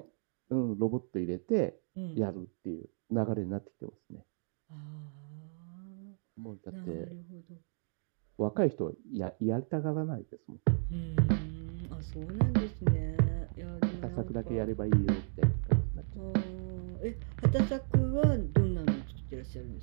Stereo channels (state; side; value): silent; left; digital silence